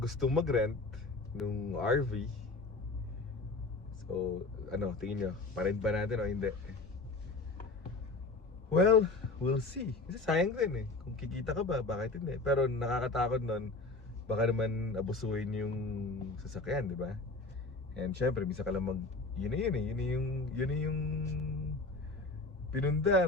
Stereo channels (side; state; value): right; quieter; 3.4 dB